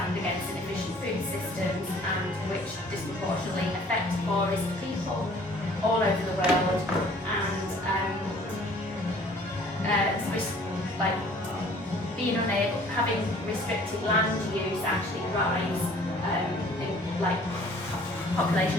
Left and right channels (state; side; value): normal; both; correlation 0.54